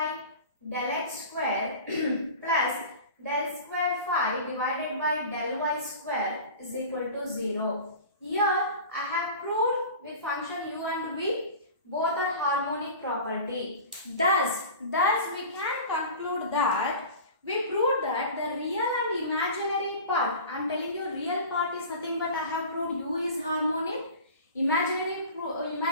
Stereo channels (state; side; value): inverted; both; correlation -0.37